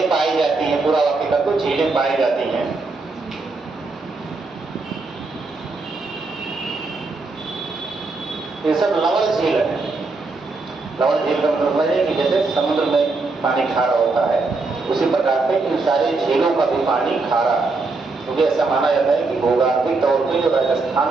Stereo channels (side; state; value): left; quieter; 3.7 dB